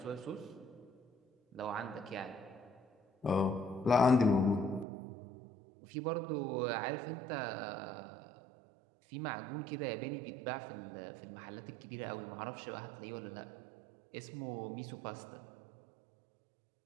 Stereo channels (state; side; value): drops out; left; at 4.9 s